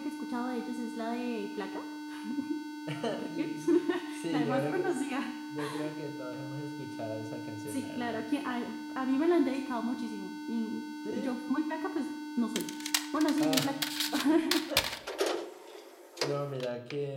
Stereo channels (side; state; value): both; identical; correlation 1.00